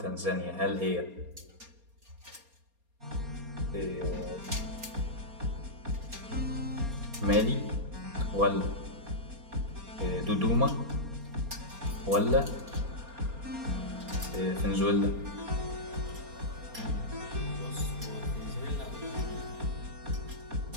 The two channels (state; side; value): late; left; 4.3 ms